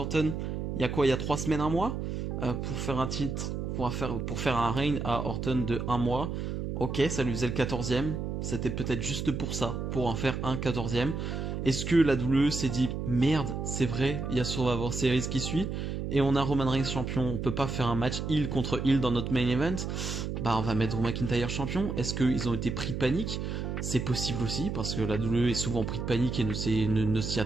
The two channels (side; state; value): right; noise; hum, 3 dB below the sound